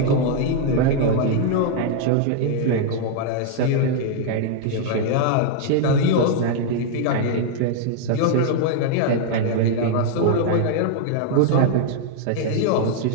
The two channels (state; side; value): different; both; correlation 0.00